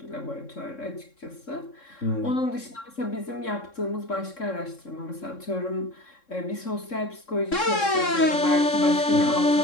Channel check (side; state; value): right; late; 3.7 ms